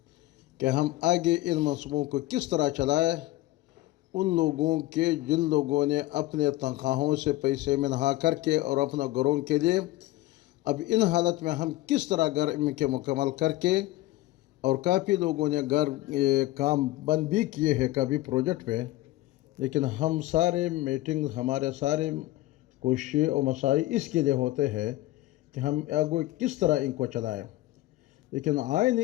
کہ ہم آگے ان منصوبوں کو کس طرح چلائیں، ان لوگوں کے جن لوگوں نے اپنے تنخواہوں سے پیسے منہا کر کے اور اپنا گھروں کے لیے اب ان حالت میں ہم کس طرح گھر ان کے مکمل کر کے، اور کافی لوگوں نے گھر کام بند بھی کیے ہیں کبھی پروجیکٹ پہ، لیکن ہم سارے میٹنگ ہمارے سارے کوششیں اور مساعی اس کے لیے ہوتے ہیں کہ ہم آگے کس طرح ان کو چلائیں۔ لیکن آئین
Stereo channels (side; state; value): right; quieter; 17.2 dB